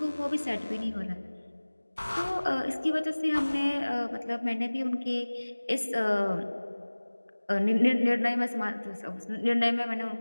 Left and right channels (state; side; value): inverted; both; correlation -1.00